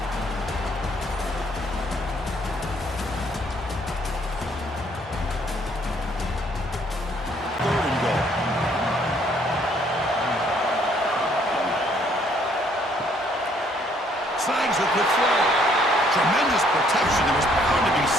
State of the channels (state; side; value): normal; both; correlation 0.65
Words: slangs it with flow. Tremendous protection. There was bound to be